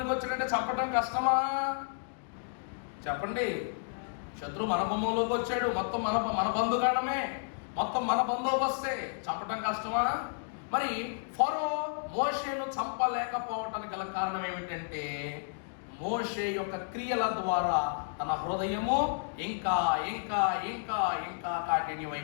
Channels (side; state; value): right; silent; digital silence